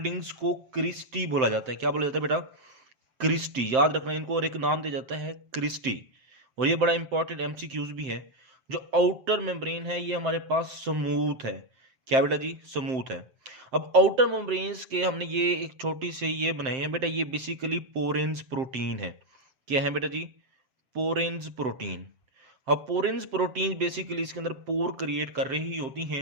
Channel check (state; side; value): late; left; 7.7 ms